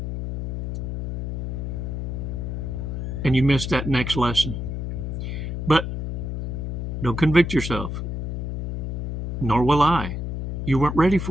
And you missed that next lesson. But don't convict yourself. Nor will I. You weren't ready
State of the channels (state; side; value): noise; left; hum, 4 dB below the sound